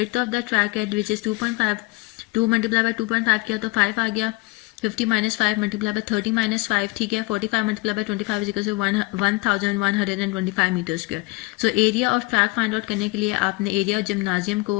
ऑफ द ट्रैक है विच इज 2.5. 2 मल्टीप्लाई बाय 2.5 किया तो 5 आ गया. 50 माइनस 5 मल्टीप्लाई बाय 30 माइनस 5. ठीक है, 45 multiply by 25 is equal to 1125 meter square. So area of track find out करने के लिए आपने एरिया ऑफ जिम्नाजियम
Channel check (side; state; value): right; quieter; 23.0 dB